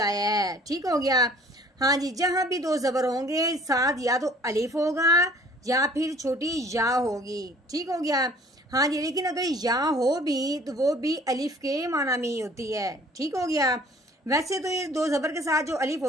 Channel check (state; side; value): normal; both; correlation 0.53